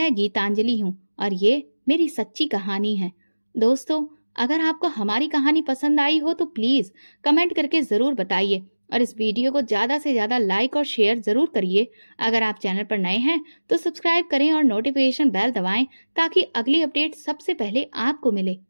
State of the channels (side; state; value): both; inverted; correlation -1.00